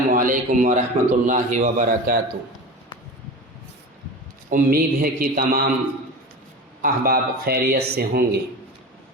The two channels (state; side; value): normal; both; correlation 0.30